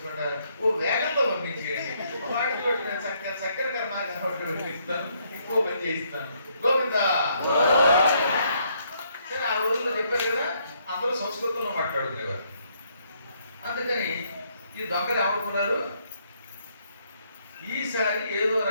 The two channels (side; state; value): both; inverted; correlation -0.71